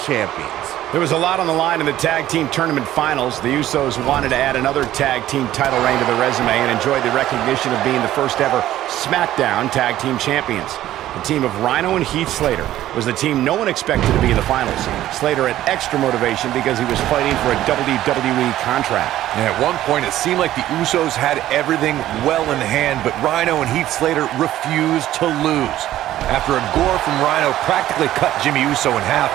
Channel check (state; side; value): quieter; left; 13.6 dB